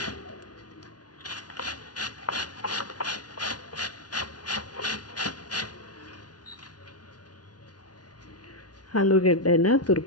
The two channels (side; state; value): right; late; 0.69 ms